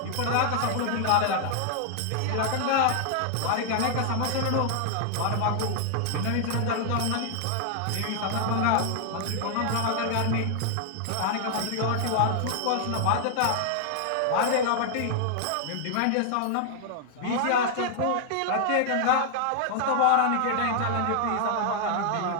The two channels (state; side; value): different; both; correlation 0.00